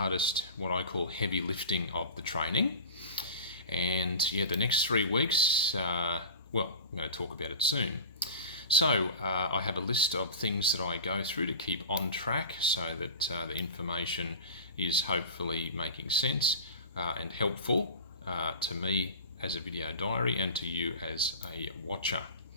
what I call heavy lifting of the training. And yeah, the next 3 weeks, I'm going to talk about it soon. So I have a list of things that I go through to keep on track so that the information is hopefully making sense and helpful to me as a video diary and to you as a watcher.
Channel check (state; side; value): inverted; both; correlation -0.31